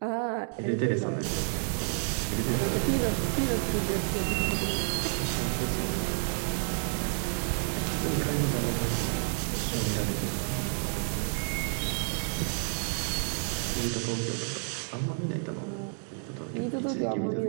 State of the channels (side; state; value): left; silent; 55 dB below the other